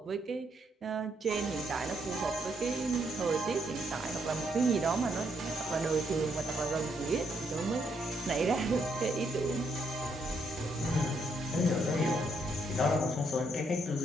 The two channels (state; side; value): normal; both; correlation 0.75